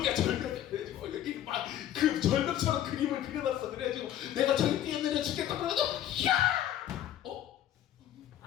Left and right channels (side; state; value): right; quieter; 11.6 dB